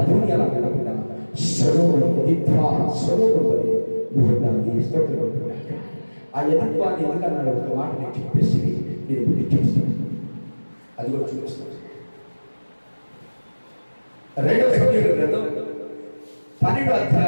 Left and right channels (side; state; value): both; inverted; correlation -1.00